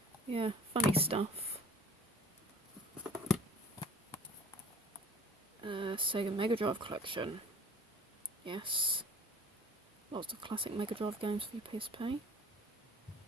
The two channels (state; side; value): normal; both; correlation 0.41